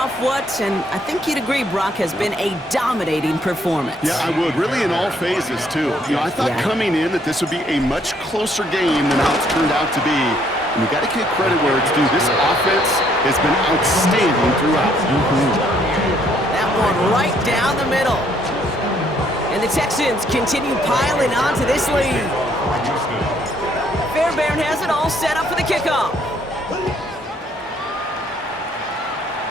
what, and I think you'd agree, Brock, has been a dominating performance. Yeah, I would. Really in all phases, too. You know, I thought coming in that this would be a much closer game than how it's turned out to be. And you got to give credit where it's due. This offense has been outstanding throughout. That one right down the middle. And the Texans continue piling on to this lead. Fairbairn has it all set up for the kickoff.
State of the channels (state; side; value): normal; both; correlation 0.67